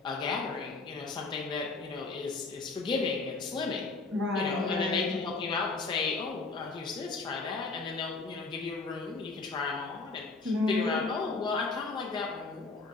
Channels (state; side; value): quieter; right; 3.8 dB